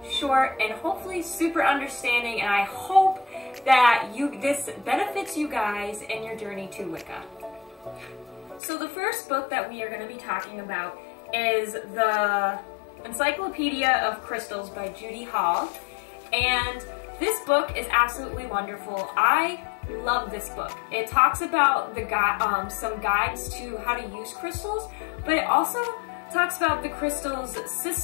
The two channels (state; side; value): drops out; right; at 8.6 s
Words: short, and hopefully super understanding, and I hope that this benefits you guys in your journey to Wicca. So the first book that we are going to be talking about is the Encyclopedia of Crystals by Judy Hall, and this book is absolutely wonderful. I love this book. It talks about some guides to how to use crystals, but it also talks about the crystal's